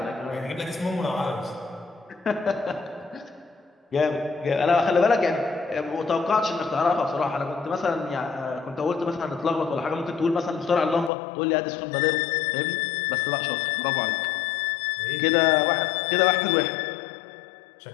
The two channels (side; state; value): right; drops out; at 11.1 s